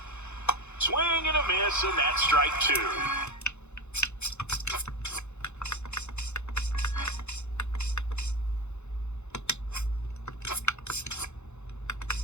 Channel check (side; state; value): right; late; 0.82 ms